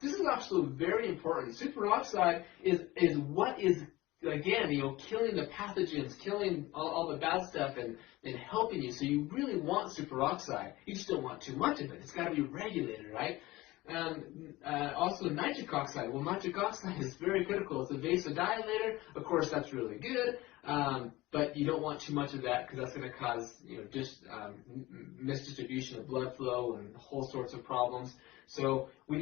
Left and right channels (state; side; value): quieter; right; 19.1 dB